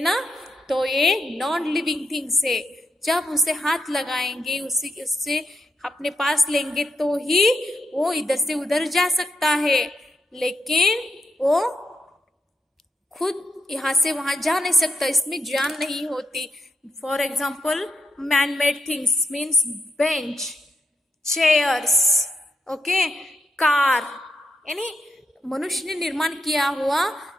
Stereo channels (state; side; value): normal; both; correlation 0.82